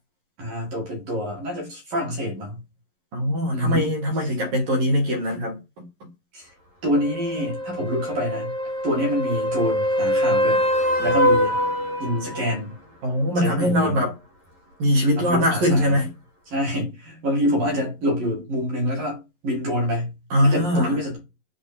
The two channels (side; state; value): left; late; 11 ms